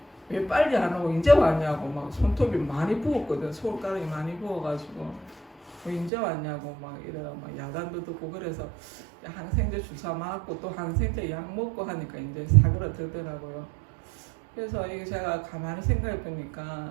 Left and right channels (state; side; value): drops out; left; at 6.1 s